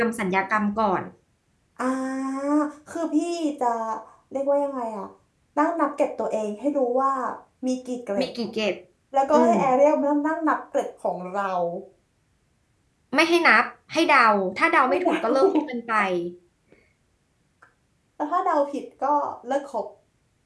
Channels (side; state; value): both; identical; correlation 1.00